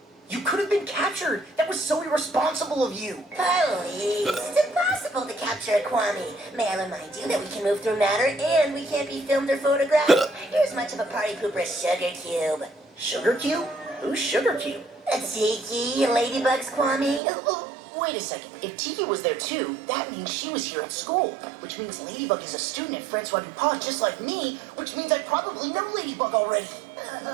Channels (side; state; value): left; drops out; at 17.2 s